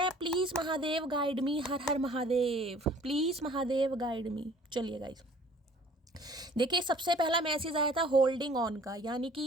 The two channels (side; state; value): both; normal; correlation 0.52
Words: Please Mahadev guide me, her her Mahadev, please Mahadev guide मी। चलिए गाइस, देखिए सबसे पहला मैसेज आया था होल्डिंग ऑन का, यानी